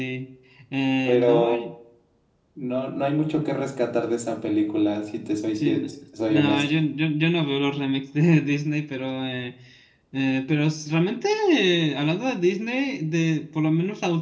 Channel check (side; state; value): both; identical; correlation 1.00